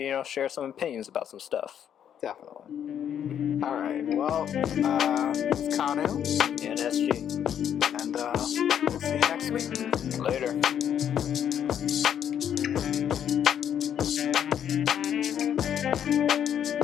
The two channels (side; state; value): right; quieter; 9.2 dB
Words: share some opinions about some stuff. Definitely. All right. Well, it's Kanu. And SG. next week. Later.